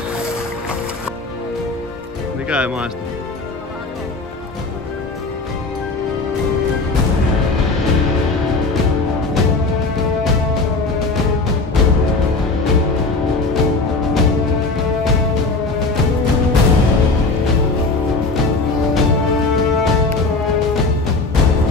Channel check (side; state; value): right; quieter; 3.6 dB